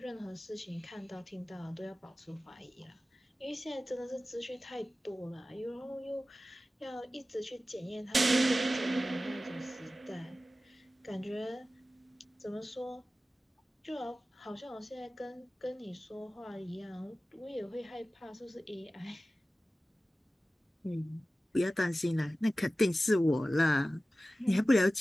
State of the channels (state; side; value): normal; both; correlation 0.95